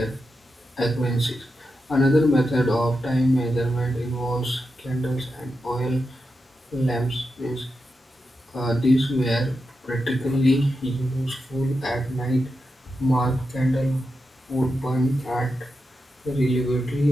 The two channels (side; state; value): both; normal; correlation 0.88